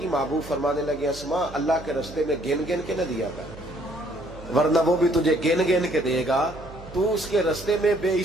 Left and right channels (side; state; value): right; noise; hum, 17 dB below the sound